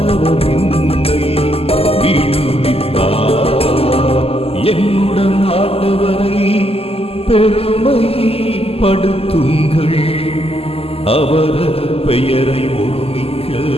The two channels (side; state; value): right; late; 0.28 ms